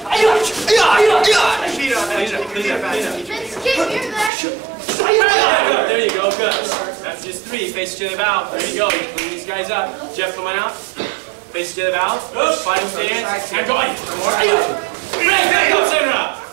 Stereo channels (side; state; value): left; drops out; at 4.3 s